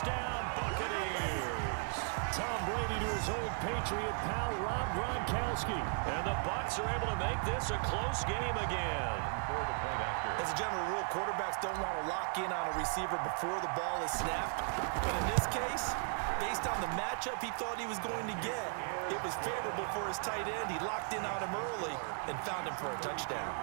Buccaneers. Tom Brady to his old Patriot pal, Rob Gronkowski. And the Bucs are able to make this a close game again. As a general rule, quarterbacks don't want to lock in on a receiver before the ball is snapped. But in this case, based on the matchup he thought he was going to get, it was favorable for his tight end. He locked in on him early and found him for a touchdown.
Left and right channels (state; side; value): silent; left; 54 dB below the other